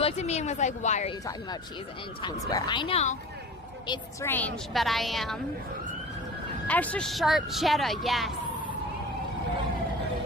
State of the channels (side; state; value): both; normal; correlation 0.37